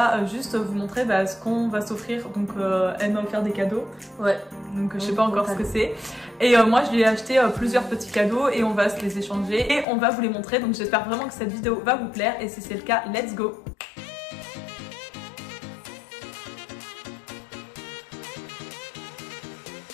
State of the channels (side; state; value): right; drops out; at 9.9 s